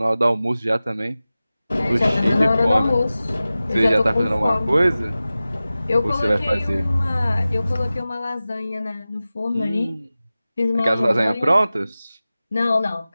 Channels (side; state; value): both; inverted; correlation -0.96